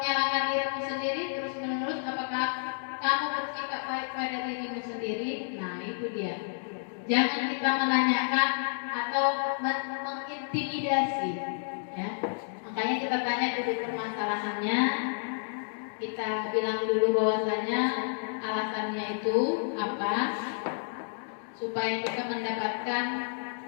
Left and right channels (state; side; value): silent; right; digital silence